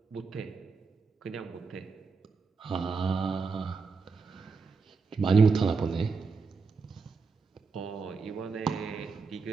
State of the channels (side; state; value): left; quieter; 4.8 dB